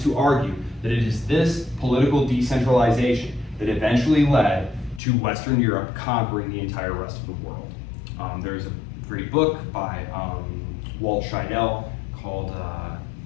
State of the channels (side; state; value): right; drops out; at 5.0 s